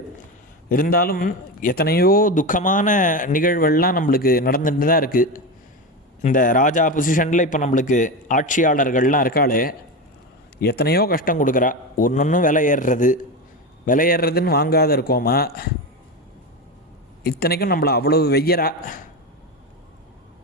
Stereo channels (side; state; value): both; normal; correlation 0.19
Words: இருந்தாலும் எத்தனையோ துக்கமான நிகழ்வுகள்லாம் நம்மளுக்கு நடந்துட்டு தான் இருக்குது. இந்த ராஜா பொசிஷனில் இப்போ நம்மளுக்கு ஆட்சியாளர்கள்லாம் இருக்காளே, எத்தனையோ கஷ்டம் கொடுக்குறா. ஒன்றொன்றும் விலை ஏறுறதுன்னு வாங்காத இருக்கோமா? இத்தனைக்கும் நம்மளை அவ்வளவு வெய்யறா.